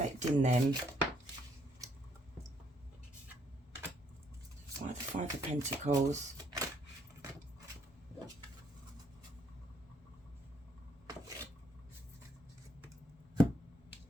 them? Why the Five of Pentacles? So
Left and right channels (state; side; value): normal; both; correlation 0.69